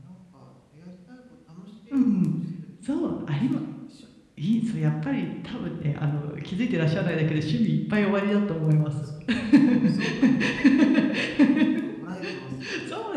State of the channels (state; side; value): identical; both; correlation 1.00